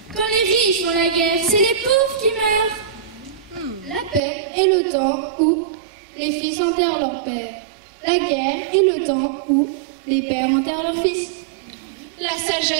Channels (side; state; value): left; drops out; at 4.2 s